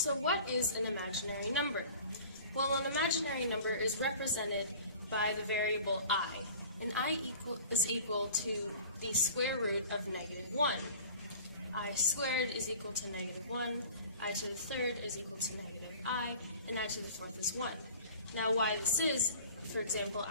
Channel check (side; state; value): both; inverted; correlation -0.45